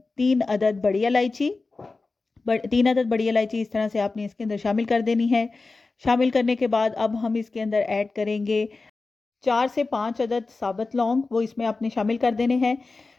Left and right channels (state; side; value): quieter; right; 3.7 dB